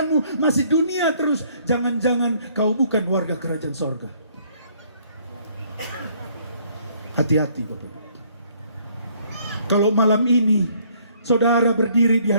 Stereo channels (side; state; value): both; inverted; correlation -0.63